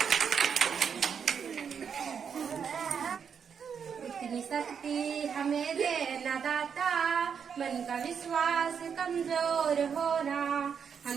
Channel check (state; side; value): quieter; left; 7.0 dB